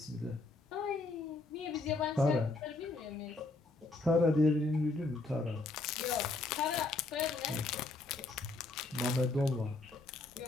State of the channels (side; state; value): right; quieter; 3.3 dB